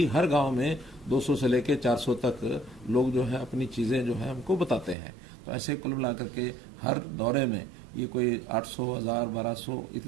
हर गांव में 200 से लेके 400 तक लोग जो है अपनी चीजें जो है हमको बताते हैं। तो ऐसे कुल मिलाकर के हर दौरे में ये कोई 800, 1000, 1200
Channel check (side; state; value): left; drops out; at 5.0 s